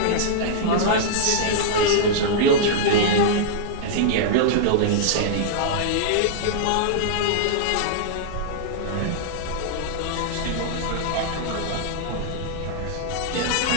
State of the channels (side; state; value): both; different; correlation -0.02